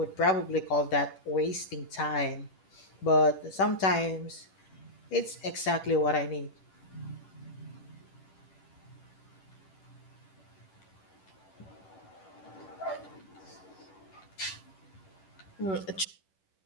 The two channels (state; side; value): late; right; 10 ms